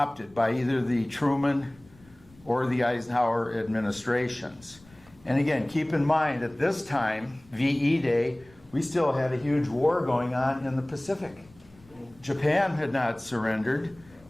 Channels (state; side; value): noise; left; rumble, 27 dB below the sound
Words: by either the Truman or the Eisenhower administrations. And again, keep in mind, at this time, VE Day, we still had a huge war going on in the Pacific. Japan had not surrendered,